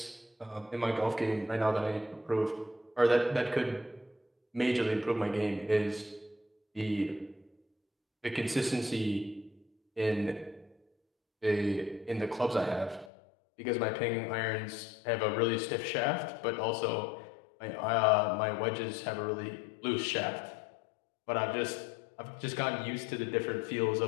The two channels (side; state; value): right; drops out; at 13.1 s